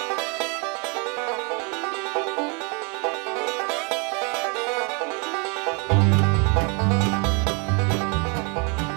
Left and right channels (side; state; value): left; quieter; 33.3 dB